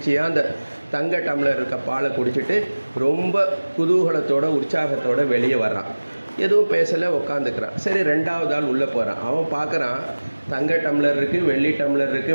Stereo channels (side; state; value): both; inverted; correlation -1.00